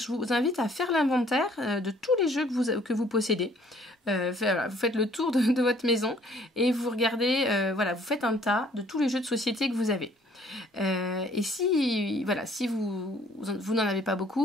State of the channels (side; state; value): both; normal; correlation 0.59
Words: vous invite à faire l'inventaire de tous les jeux que vous possédez. Vous faites le tour de votre maison et vous regardez, vous faites un tas de tous les jeux de société que vous avez. Et si vous n'en avez pas